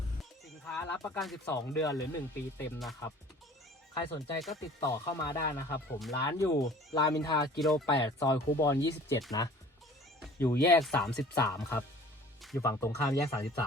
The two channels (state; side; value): normal; both; correlation 0.47